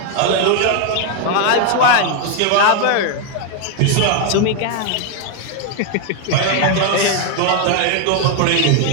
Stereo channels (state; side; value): different; both; correlation 0.01